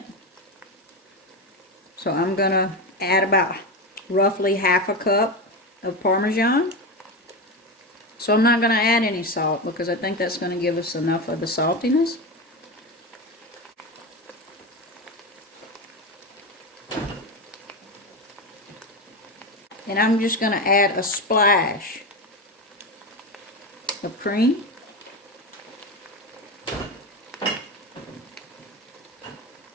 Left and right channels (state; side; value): normal; both; correlation 0.18